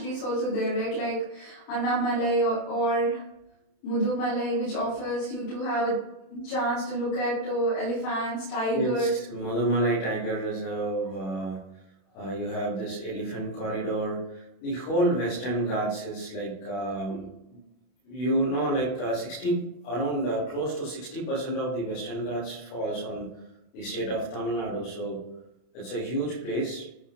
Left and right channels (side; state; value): right; late; 31 ms